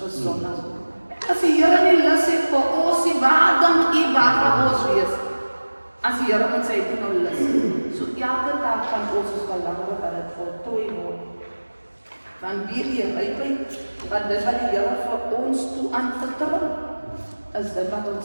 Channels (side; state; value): both; inverted; correlation -1.00